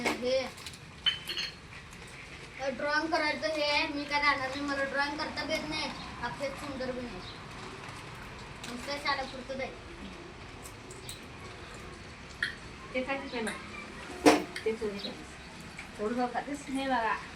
हे ड्रॉइंग करायचं हे आहे. मी काय राहणार नाही मला ड्रॉइंग करता बी येत नाही अक्षर सुंदर बी नाही नुसतं शाळेपुरतं जाईल ते खायचं पहिला ते चोरी खायचं थोडं जाऊ खातेस हे बघा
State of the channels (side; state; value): both; identical; correlation 1.00